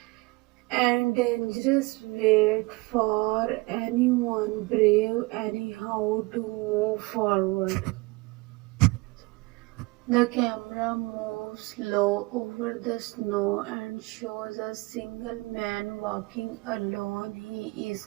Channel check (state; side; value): quieter; left; 24.1 dB